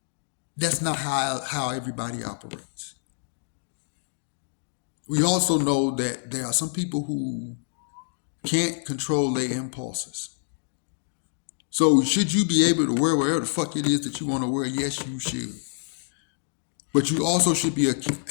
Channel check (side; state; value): right; silent; digital silence